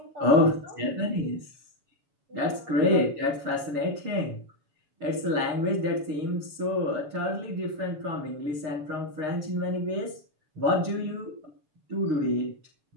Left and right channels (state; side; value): late; left; 7.1 ms